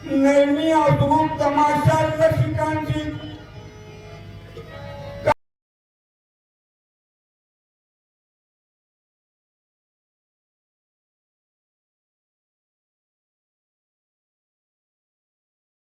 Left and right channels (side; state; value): both; identical; correlation 1.00